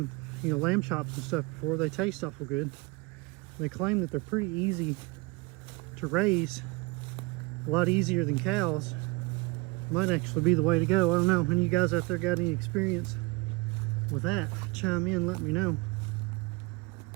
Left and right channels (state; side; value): quieter; left; 25.1 dB